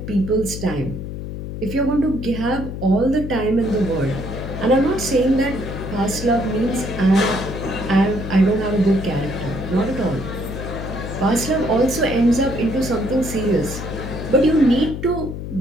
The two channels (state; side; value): noise; left; hum, 7 dB below the sound